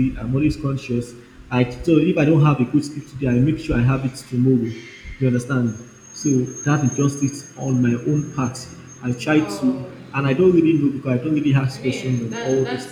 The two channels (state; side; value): identical; both; correlation 1.00